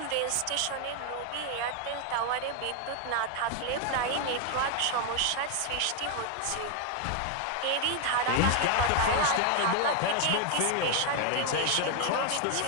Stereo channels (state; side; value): different; both; correlation 0.00